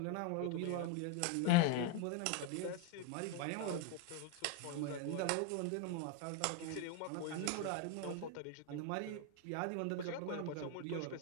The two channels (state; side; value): different; both; correlation 0.02